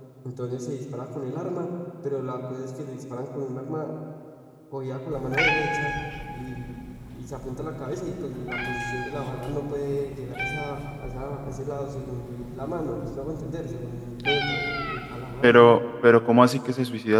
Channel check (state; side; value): identical; both; correlation 1.00